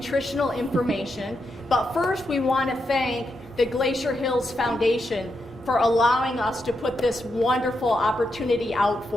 information. But first, we want to thank the Glacier Hills Foundation for allowing us to put this wonderful opportunity out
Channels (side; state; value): both; normal; correlation 0.84